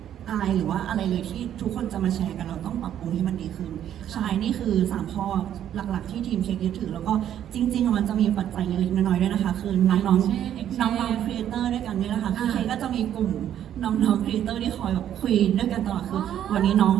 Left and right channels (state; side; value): quieter; left; 10.5 dB